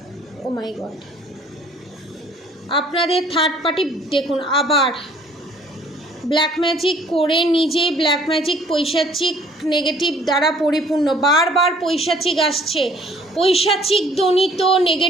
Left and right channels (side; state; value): both; normal; correlation 0.57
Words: ও মাই গড, আপনাদের থার্ড পার্টি দেখুন আবার ব্ল্যাক ম্যাজিক করে নিজেই ব্ল্যাক ম্যাজিক পৈশাচিক নেগেটিভ দ্বারা পরিপূর্ণ, বারবার পৈশাচিক আসছে, পৈশাচিক জনিত